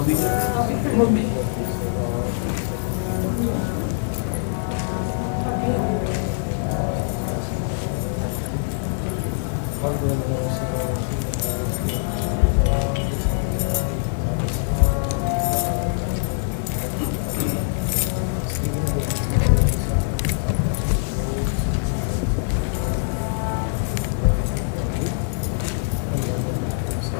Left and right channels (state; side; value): silent; right; digital silence